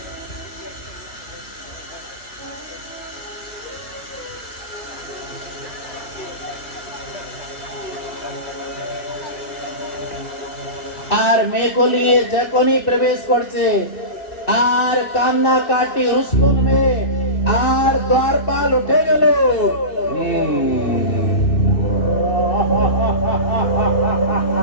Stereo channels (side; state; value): right; late; 2.6 ms